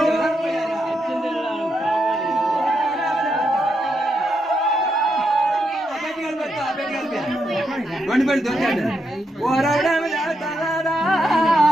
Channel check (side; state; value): both; normal; correlation 0.82